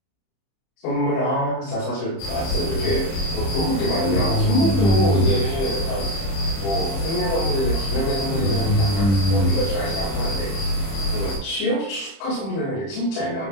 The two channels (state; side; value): late; right; 30 ms